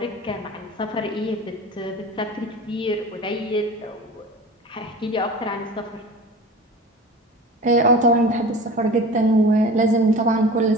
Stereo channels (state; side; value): normal; both; correlation 0.37